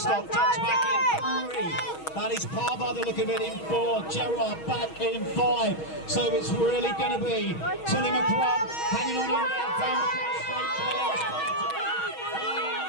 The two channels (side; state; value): right; late; 6.3 ms